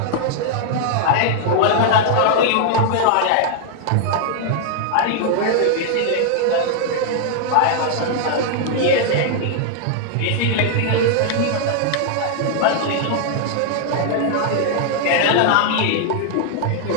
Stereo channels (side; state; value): both; different; correlation -0.01